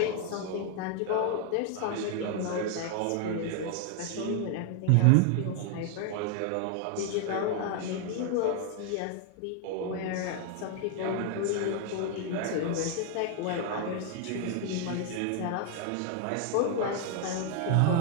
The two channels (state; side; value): different; both; correlation 0.00